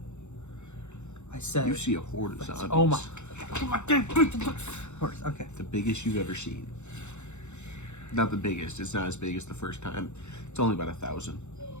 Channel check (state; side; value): late; right; 0.83 ms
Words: I said. you see a horde of zombies. Oh my. Okay. The biggest you've ever seen. Not the biggest. It's not as big as the first time. It's only about 1,000.